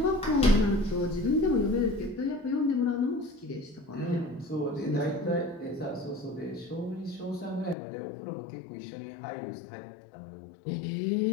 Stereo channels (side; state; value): right; drops out; at 7.8 s